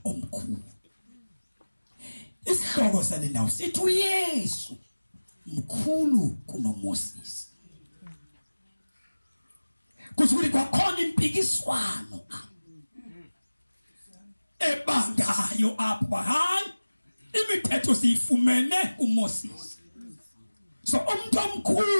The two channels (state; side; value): inverted; both; correlation -1.00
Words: omkhulu. Isihloko sale ndawo sithi uYesu mkhulu kunoMoses. Kusuke kwakhona impikiswano ebangayo apha hayi imithetho siyifumene kuMoses. So umuntu